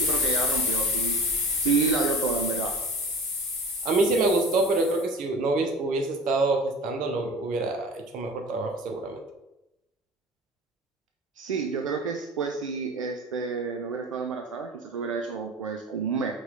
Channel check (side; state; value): both; normal; correlation 0.39